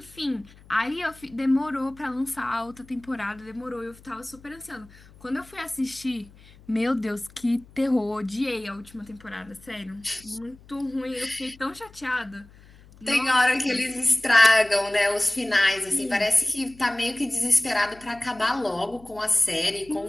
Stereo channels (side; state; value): left; noise; hum, 24 dB below the sound